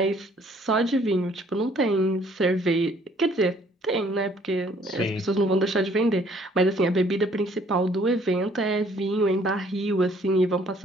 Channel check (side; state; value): both; normal; correlation 0.61